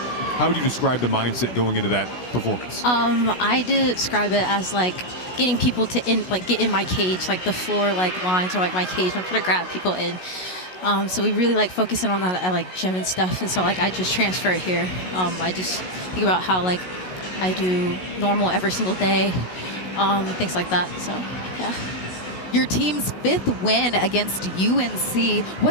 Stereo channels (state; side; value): late; right; 16 ms